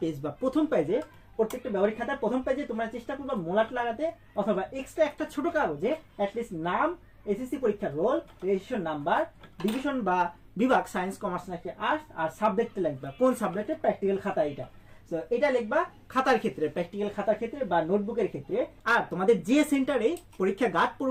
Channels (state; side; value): identical; both; correlation 1.00